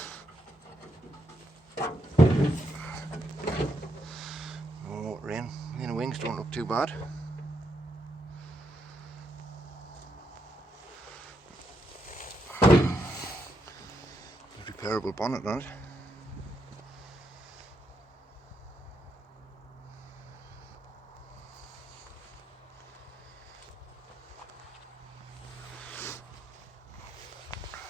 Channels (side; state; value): both; normal; correlation 0.80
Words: No motor in. The inner wings don't look too bad. Repairable bonnet on it.